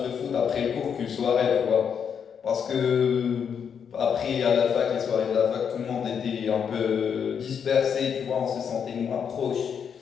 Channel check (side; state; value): right; quieter; 7.3 dB